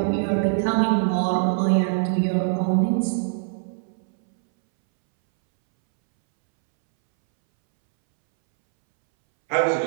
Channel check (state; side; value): silent; left; 64 dB below the other